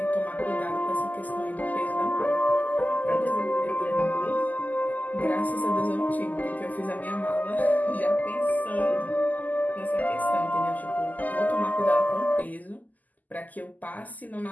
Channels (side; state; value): right; late; 0.081 ms